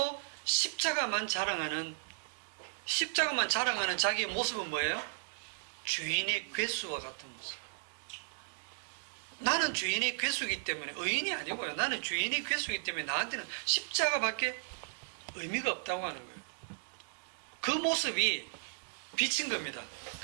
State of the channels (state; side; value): silent; left; 54 dB below the other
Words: 십자가만 자랑하는 자기의 모습은 뭐예요? 죄인의 괴수와 같은 모습. 나는 죄인의 괴수이기 때문에 의인이 아니고요. 나는 죄인의 괴수이기 때문에 나한테는 십자가밖에 의미가 없다고 하는 거예요. 그 모습이 비친 겁니다.